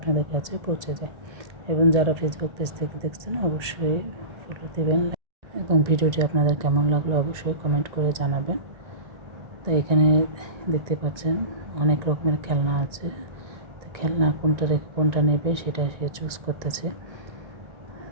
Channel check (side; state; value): left; late; 1.9 ms